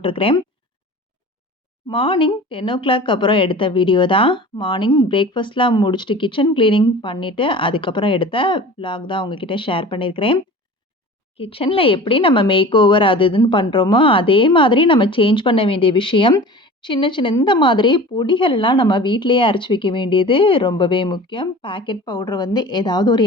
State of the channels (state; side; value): normal; both; correlation 0.39